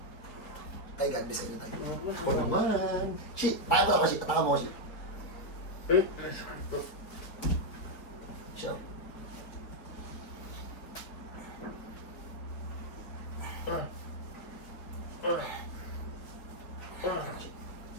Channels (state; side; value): late; right; 4.7 ms